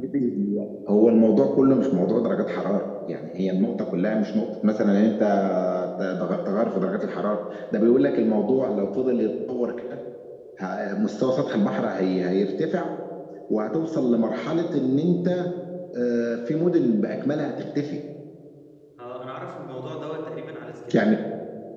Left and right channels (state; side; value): identical; both; correlation 1.00